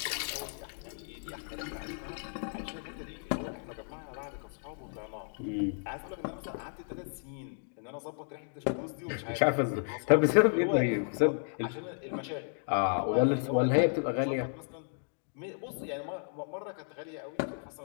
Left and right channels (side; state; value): right; silent; 56 dB below the other